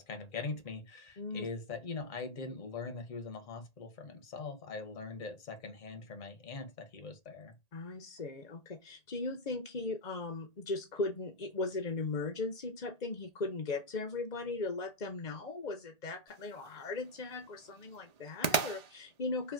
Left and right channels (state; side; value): late; right; 1.8 ms